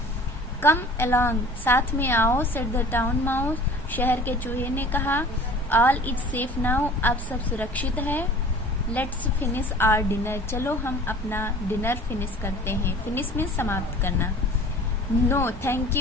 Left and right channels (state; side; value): normal; both; correlation 0.45